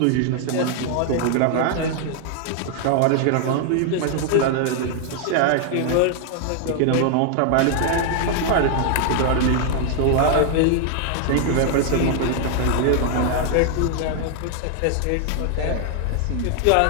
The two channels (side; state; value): both; different; correlation 0.00